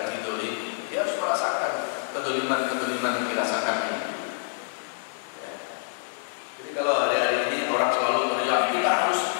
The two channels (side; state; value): right; silent; digital silence